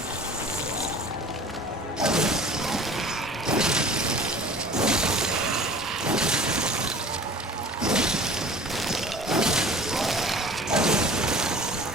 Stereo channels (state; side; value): normal; both; correlation 0.44